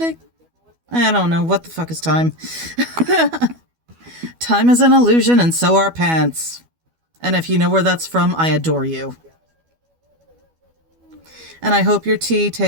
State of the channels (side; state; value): left; late; 12 ms